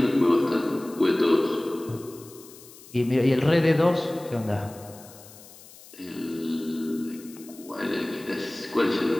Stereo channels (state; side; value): noise; left; hiss, 20 dB below the sound